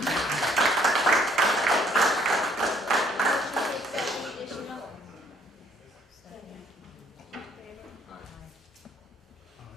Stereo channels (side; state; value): both; normal; correlation 0.63